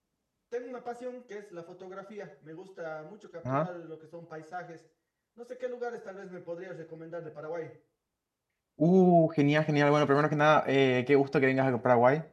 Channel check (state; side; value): identical; both; correlation 1.00